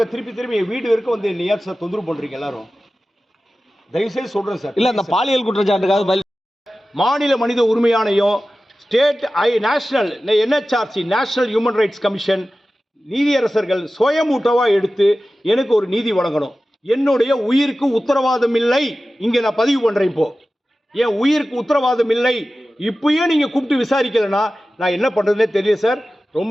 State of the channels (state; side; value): normal; both; correlation 0.95